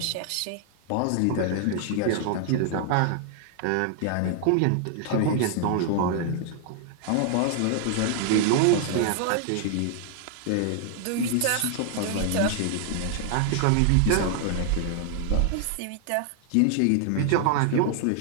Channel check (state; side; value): different; both; correlation 0.00